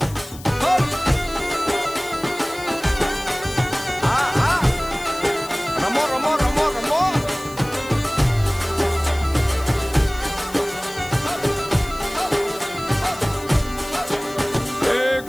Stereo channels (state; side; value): noise; left; hiss, 18 dB below the sound